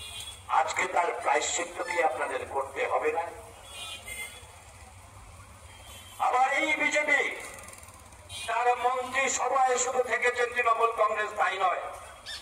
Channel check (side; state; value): both; identical; correlation 1.00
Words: আজকে তার প্রায়শ্চিত্ত কি আপনাদের করতে হবে না? আবার এই বিজেপি তার মন্ত্রী সভায় শুধু থেকেছেন তৃণমূল কংগ্রেস, তাই নয়,